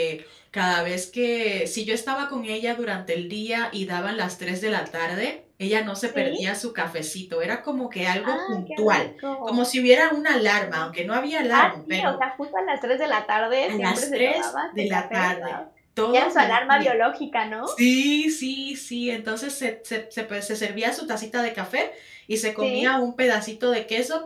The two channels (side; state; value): both; identical; correlation 1.00